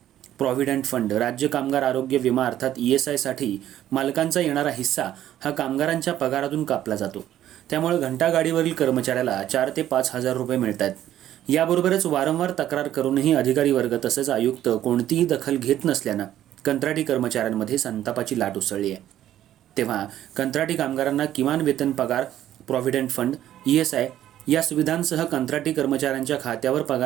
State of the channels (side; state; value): left; quieter; 12.1 dB